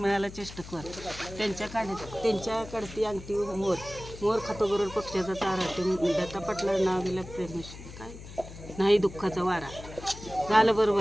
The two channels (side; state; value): left; noise; hum, 14 dB below the sound